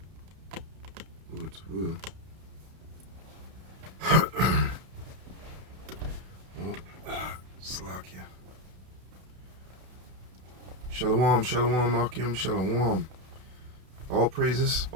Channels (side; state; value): left; late; 32 ms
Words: Oh, it's will. Oh, Slakia. Shalom, shalom, Akim, shalom. All praises,